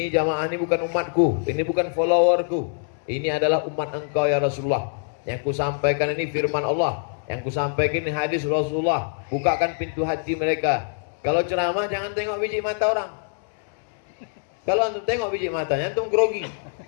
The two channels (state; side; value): silent; right; digital silence